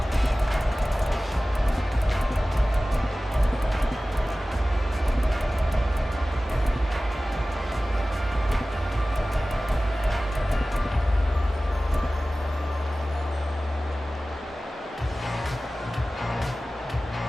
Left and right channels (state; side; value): normal; both; correlation 0.97